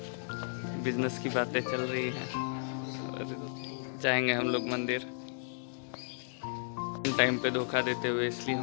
बिजनेस की बातें चल रही हैं। और जाएंगे हम लोग मंदिर टाइम पे धोखा देते हुए, इसलिए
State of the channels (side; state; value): right; silent; digital silence